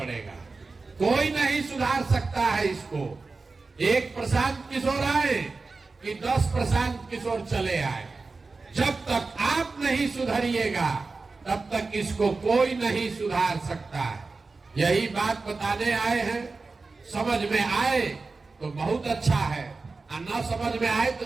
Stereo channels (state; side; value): quieter; left; 3.9 dB